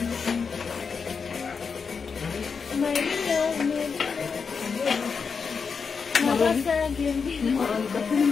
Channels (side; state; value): right; quieter; 5.6 dB